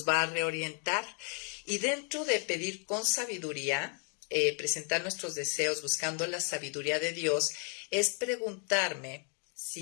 va a reorientar. Y dentro de pedir con sabiduría, presentar nuestros deseos buscando la sabiduría de Dios, es preguntarme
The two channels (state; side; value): quieter; right; 39.3 dB